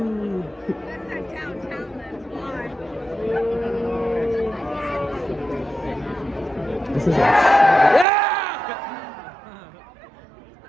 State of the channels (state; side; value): drops out; left; at 8.1 s